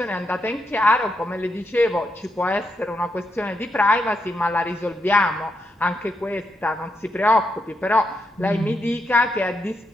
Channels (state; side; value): normal; both; correlation 0.82